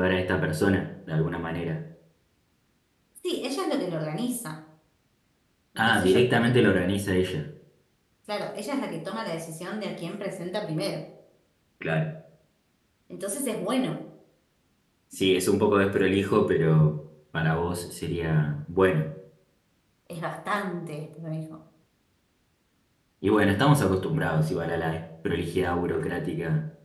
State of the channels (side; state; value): both; identical; correlation 1.00